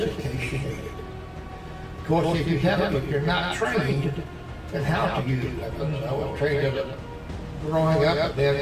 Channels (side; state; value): both; identical; correlation 1.00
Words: in case you need it. Of course, if you're not trained in how to use weapons, I was trained as growing up